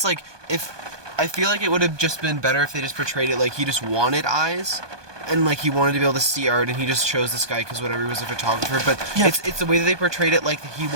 Like if I feel like it would have just been better if they just portrayed it like he just wanted eyes. And like he wanted to be able to see art, and he just chose this guy because whatever, he was a photographer. But Yeah. it's the way that they portrayed it, like he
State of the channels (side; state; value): left; late; 1.2 ms